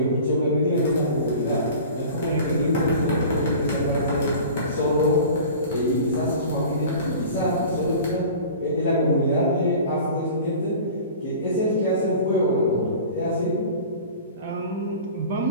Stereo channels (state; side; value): inverted; both; correlation -0.40